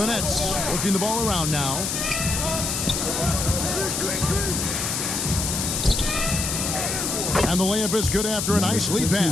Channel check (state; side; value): noise; left; hiss, 1 dB below the sound